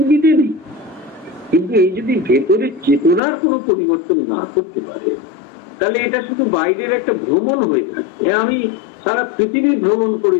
নেই, কিন্তু এই যদি ভেতরে চেতনার কোনো পরিবর্তন না করতে পারে, তাহলে এটা শুধু বাইরের একটা ভ্রমণ হয়ে থাকে। আমি সারা পৃথিবী ভ্রমণ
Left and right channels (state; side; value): drops out; right; at 3.2 s